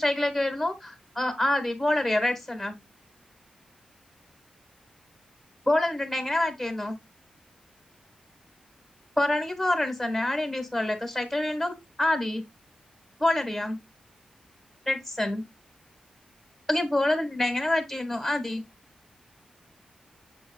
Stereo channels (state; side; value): normal; both; correlation 0.95